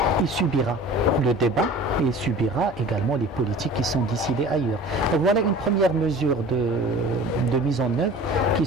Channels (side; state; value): both; normal; correlation 0.42